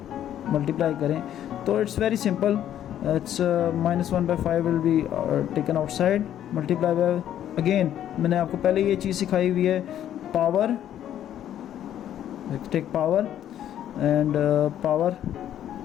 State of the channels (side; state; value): right; quieter; 11.0 dB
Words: मल्टीप्लाई करें, तो it's very simple. It's minus 1 by 5 will be taken outside, multiply by, again मैंने आपको पहले ये चीज़ सिखाई हुई है, power, take power and power